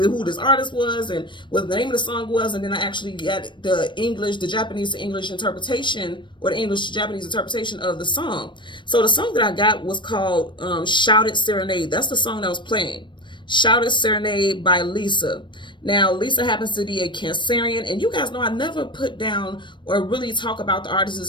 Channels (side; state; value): right; late; 0.23 ms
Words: this artist was and what the name of the song was. And then I actually got the Japanese to English interpretation, or the English to Japanese interpretation of the song. So the song that I got was called Shouted Serenade. That's the song that was playing. Shouted Serenade by Lisa. Now, Lisa happens to be a Cancerian, and you guys know I never put down or really talk about the